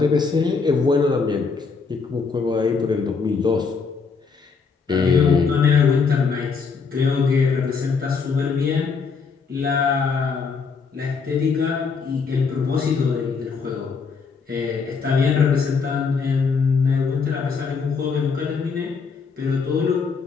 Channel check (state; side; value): quieter; right; 5.2 dB